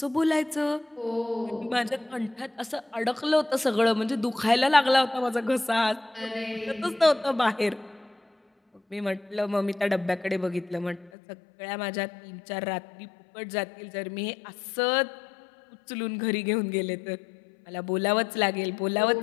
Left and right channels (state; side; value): drops out; right; at 11.1 s